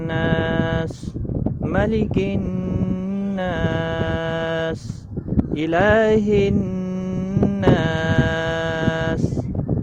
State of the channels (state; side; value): identical; both; correlation 1.00